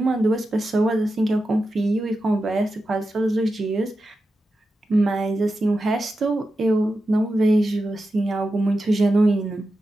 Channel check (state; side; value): normal; both; correlation 0.91